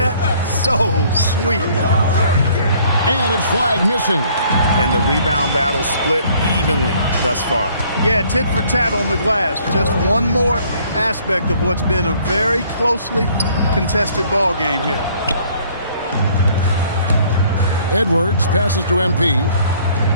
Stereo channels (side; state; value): both; inverted; correlation -0.60